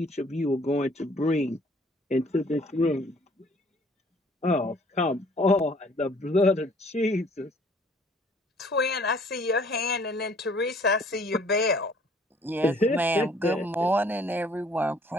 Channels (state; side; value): normal; both; correlation 0.58